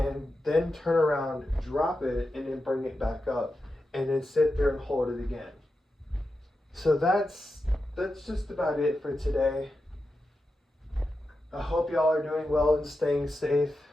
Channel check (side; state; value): both; normal; correlation 0.90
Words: then turn around, drop it, and then bring it back up, and then sit there and hold it again. So that's just about it for today. I hope y'all are doing well and staying safe,